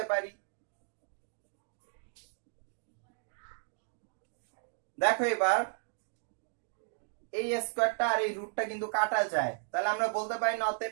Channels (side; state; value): left; silent; digital silence